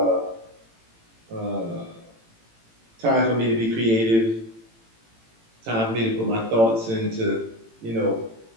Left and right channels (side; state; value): left; late; 18 ms